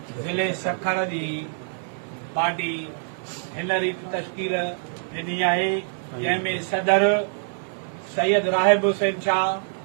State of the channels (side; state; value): left; silent; 60 dB below the other